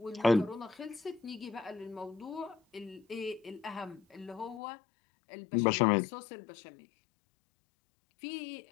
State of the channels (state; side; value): drops out; right; at 4.6 s